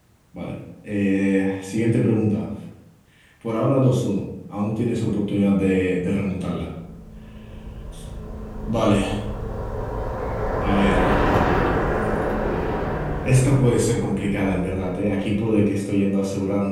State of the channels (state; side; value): identical; both; correlation 1.00